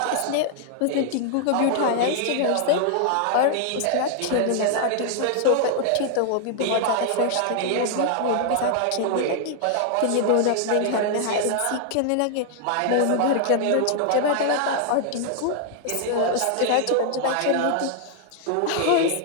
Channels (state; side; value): different; both; correlation 0.00